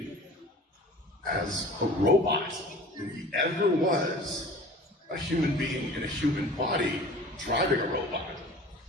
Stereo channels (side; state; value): both; normal; correlation 0.43